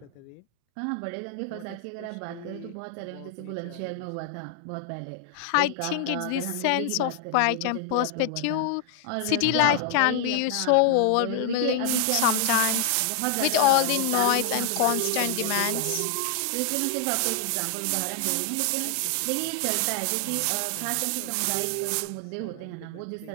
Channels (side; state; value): both; different; correlation 0.00